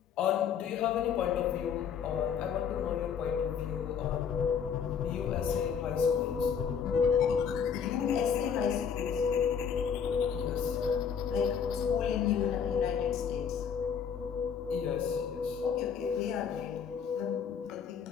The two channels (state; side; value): quieter; right; 7.2 dB